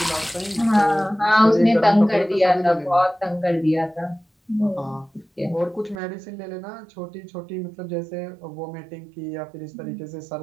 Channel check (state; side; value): drops out; left; at 6.0 s